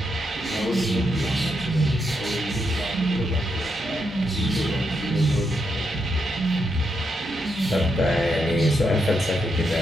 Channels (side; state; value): both; normal; correlation 0.81